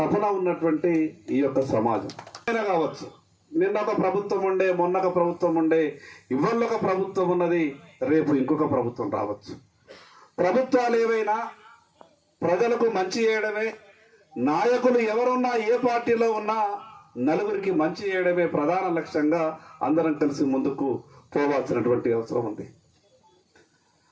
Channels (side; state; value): both; identical; correlation 1.00